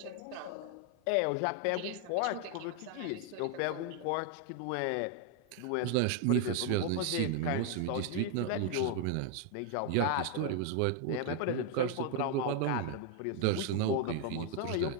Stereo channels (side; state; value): both; different; correlation 0.00